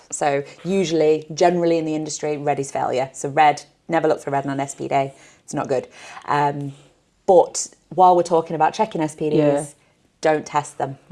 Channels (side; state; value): both; identical; correlation 1.00